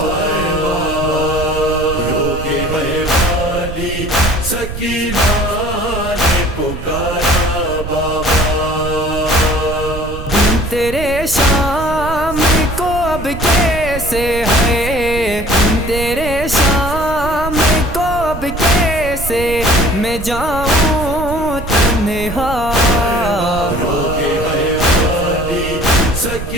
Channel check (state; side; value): noise; right; rumble, 9 dB below the sound